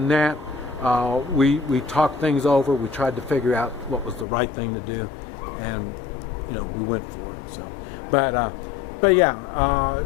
that, we talked things over. We tried to figure out what was the right thing to do, and we went for it. So, but yeah,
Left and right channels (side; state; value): right; drops out; at 4.2 s